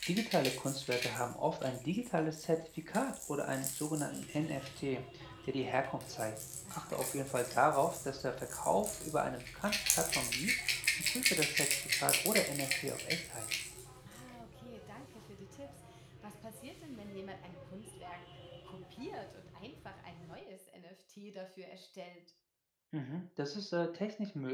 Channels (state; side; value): identical; both; correlation 1.00